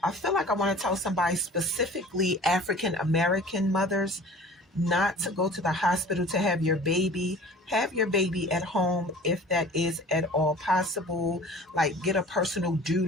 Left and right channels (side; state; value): both; normal; correlation 0.45